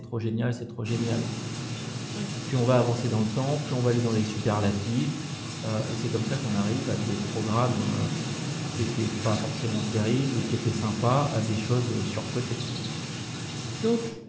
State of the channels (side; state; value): both; identical; correlation 1.00